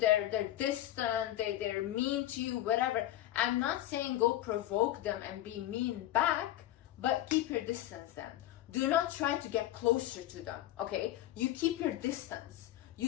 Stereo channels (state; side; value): quieter; right; 14.2 dB